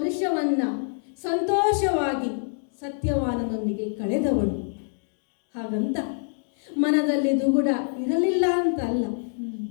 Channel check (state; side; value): silent; right; digital silence